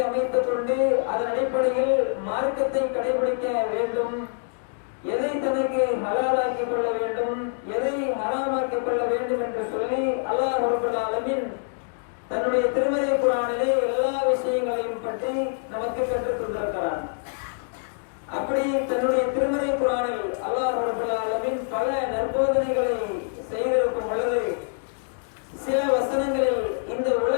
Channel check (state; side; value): silent; right; digital silence